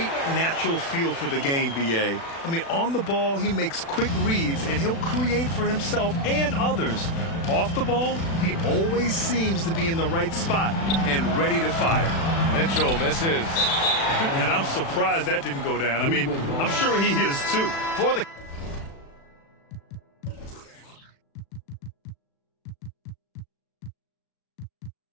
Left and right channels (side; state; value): right; late; 36 ms